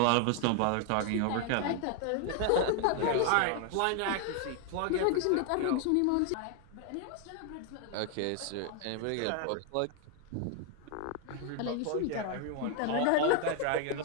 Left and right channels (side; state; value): both; different; correlation 0.00